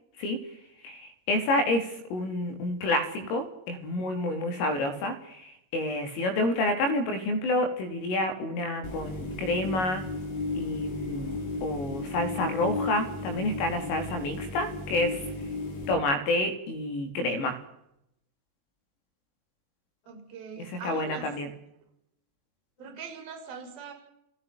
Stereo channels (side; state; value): right; late; 22 ms